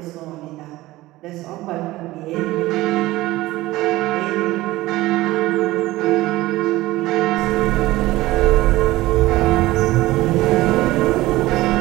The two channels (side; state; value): left; quieter; 18.0 dB